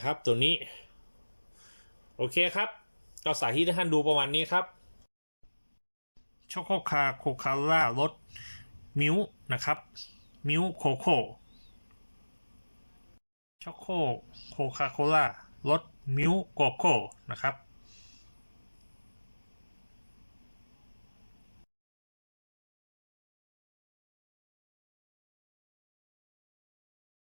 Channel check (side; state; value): both; inverted; correlation -1.00